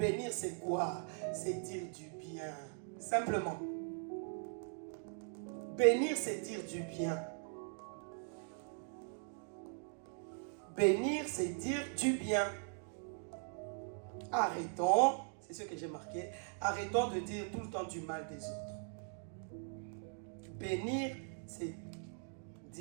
c'est quoi? C'est dire du bien. Simplement. Bénir, c'est dire du bien. Bénir, c'est dire du bien. Arrêtons, c'est ce que j'ai marqué, arrêtons de dire tout le temps du mal des autres. Bénir, c'est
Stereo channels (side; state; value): left; silent; 51 dB below the other